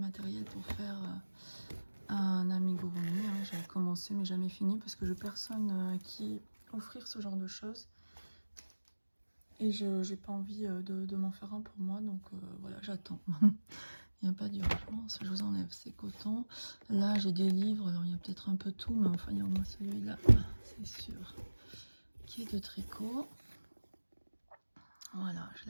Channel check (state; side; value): inverted; both; correlation -1.00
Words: pour faire un amigurumi. Hein. J'avais commencé mais jamais fini parce que je n'ai personne à qui offrir ce genre de choses. Et je n'ai pas envie de m'en faire un pour moi. Donc voilà, j'attends. Il n'y a pas d'urgence. Je vous enlève ces cotons. Là, j'ai des livres. Alors, il y a peut-être un peu tout, mais enfin, il y a au moins celui-là, c'est sûr, qui est de tricot. Voilà, je